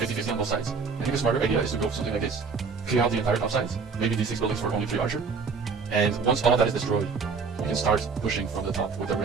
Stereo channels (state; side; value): quieter; left; 5.1 dB